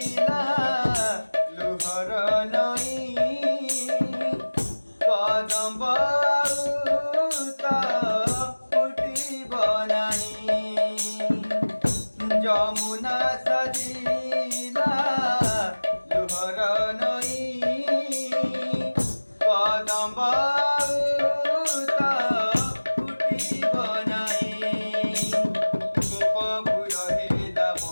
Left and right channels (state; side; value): inverted; both; correlation -1.00